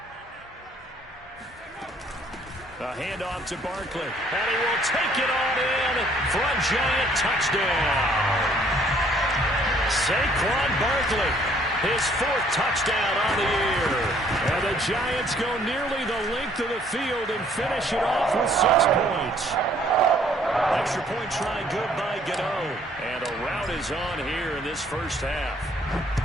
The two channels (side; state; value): both; normal; correlation 0.62